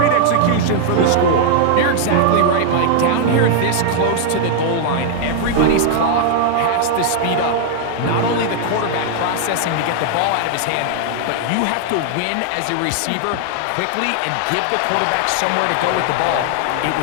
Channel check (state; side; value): different; both; correlation 0.00